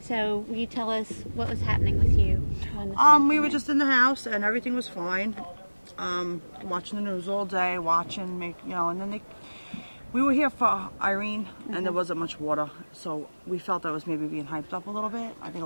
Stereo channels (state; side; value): inverted; both; correlation -1.00